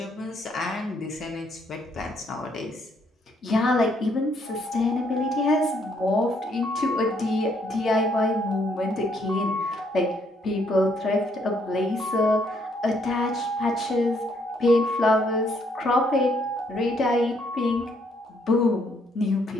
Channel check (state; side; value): normal; both; correlation 0.70